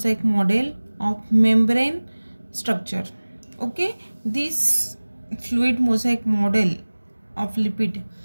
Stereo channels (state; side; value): inverted; both; correlation -1.00